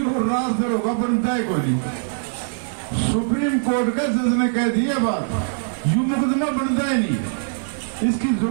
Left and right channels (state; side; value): silent; left; digital silence